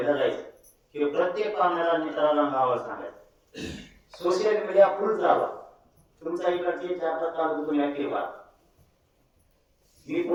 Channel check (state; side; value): identical; both; correlation 1.00